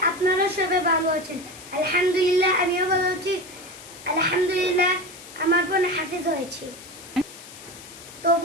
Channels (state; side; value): noise; left; hiss, 17 dB below the sound